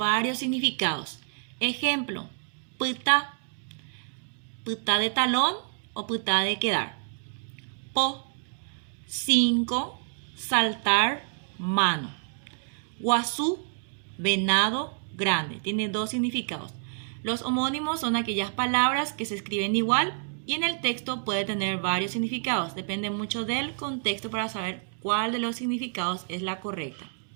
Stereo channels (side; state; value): left; silent; digital silence